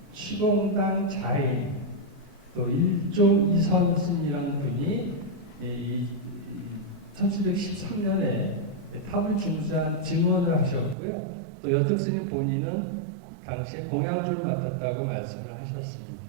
취공당 자인 또 일종 이선스님이라는 분이 1713년에 탑을 중수한 증언을 하셨고요. 또 여특스님 본인은 당시에 공양주를 맡았다고 말씀을 하셨습니다.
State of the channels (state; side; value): drops out; left; at 11.0 s